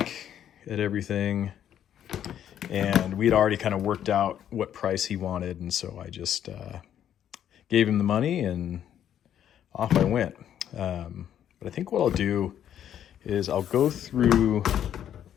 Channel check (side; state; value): right; quieter; 10.1 dB